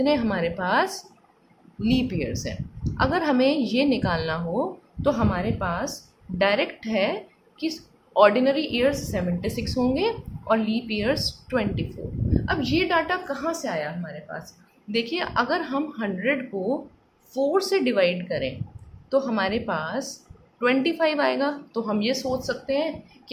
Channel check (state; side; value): identical; both; correlation 1.00